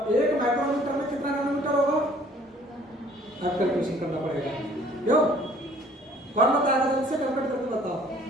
1 माइक्रोमीटर में कितना नैनोमीटर होगा, आप कैलकुलेशन करना पड़ेगा, क्यों, कौन बताएगा, जल्दी से कैलकुलेट करके बताओ।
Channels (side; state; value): both; normal; correlation 0.56